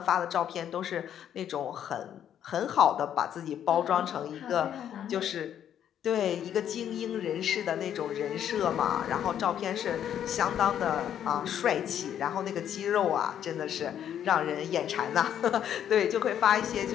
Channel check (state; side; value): quieter; right; 9.8 dB